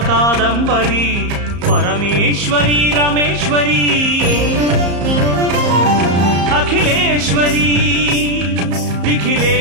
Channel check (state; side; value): late; left; 34 ms